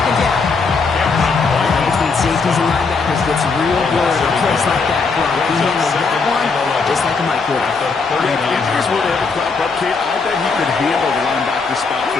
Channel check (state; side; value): quieter; right; 4.6 dB